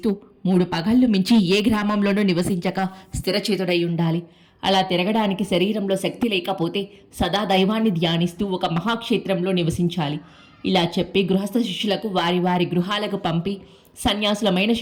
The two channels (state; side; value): identical; both; correlation 1.00